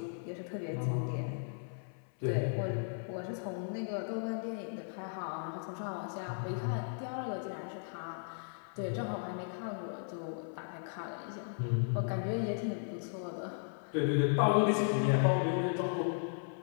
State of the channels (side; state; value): right; silent; 54 dB below the other